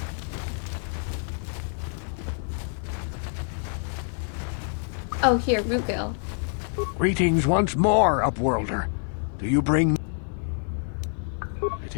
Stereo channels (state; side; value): silent; right; 60 dB below the other